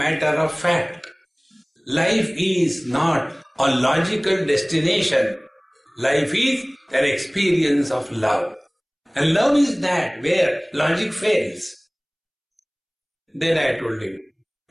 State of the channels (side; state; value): both; identical; correlation 1.00